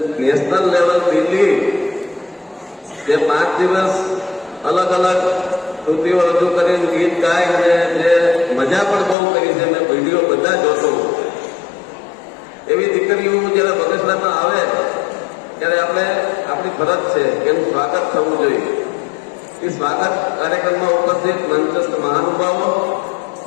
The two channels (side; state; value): right; drops out; at 9.2 s